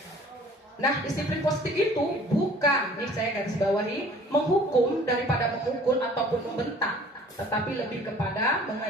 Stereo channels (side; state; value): both; normal; correlation 0.51